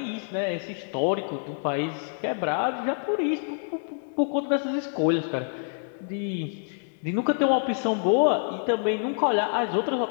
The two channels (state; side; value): silent; right; 60 dB below the other